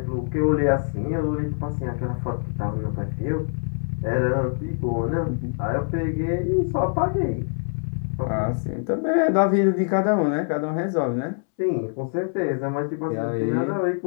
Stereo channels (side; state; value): right; silent; 62 dB below the other